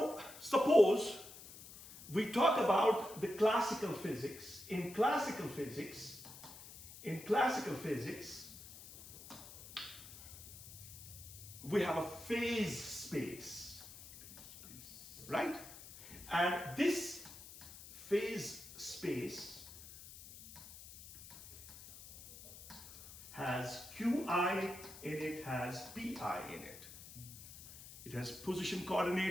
suppose we talk about the classical physics. In classical physics, we have a phase space, right? And this phase space has Qi in it, has Pi in it. It has position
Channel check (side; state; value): left; noise; hiss, 15 dB below the sound